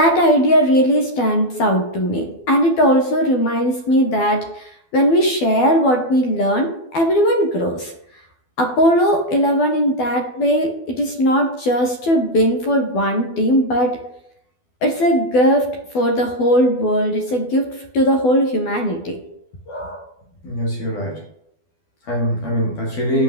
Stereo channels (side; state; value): right; late; 12 ms